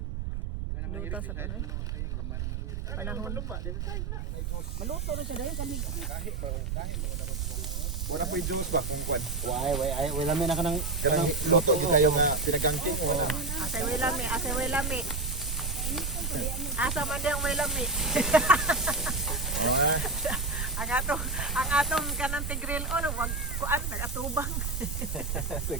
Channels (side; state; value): right; noise; rumble, 3 dB below the sound